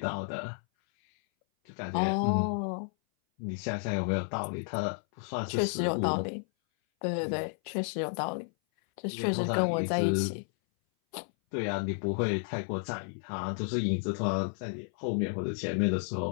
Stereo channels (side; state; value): right; silent; 57 dB below the other